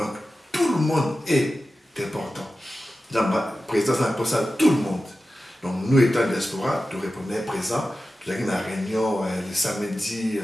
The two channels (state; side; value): normal; both; correlation 0.94